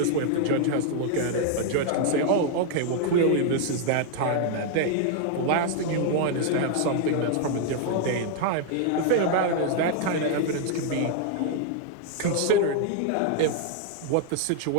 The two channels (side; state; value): both; different; correlation 0.00